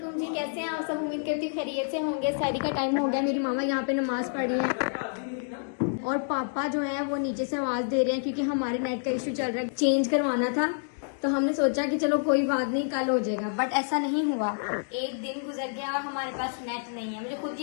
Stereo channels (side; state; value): right; silent; digital silence